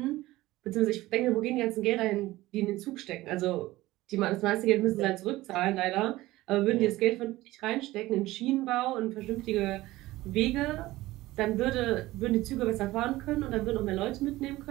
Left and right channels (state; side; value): quieter; left; 17.7 dB